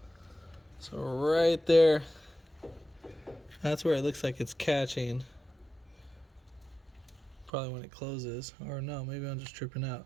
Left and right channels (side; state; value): left; drops out; at 7.5 s